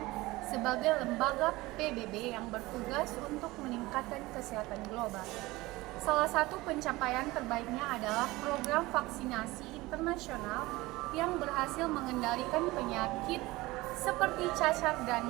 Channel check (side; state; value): left; quieter; 20.1 dB